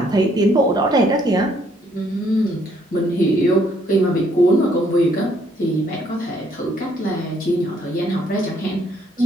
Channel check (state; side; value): normal; both; correlation 0.67